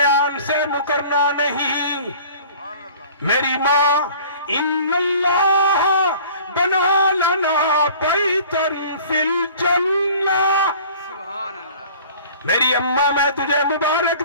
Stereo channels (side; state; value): both; inverted; correlation -0.47